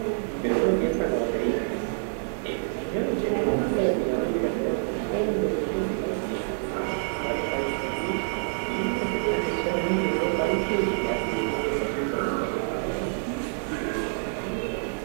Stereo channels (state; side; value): silent; left; 60 dB below the other